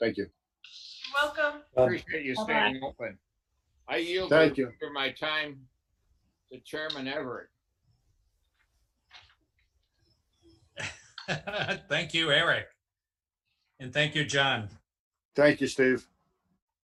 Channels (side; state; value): both; identical; correlation 1.00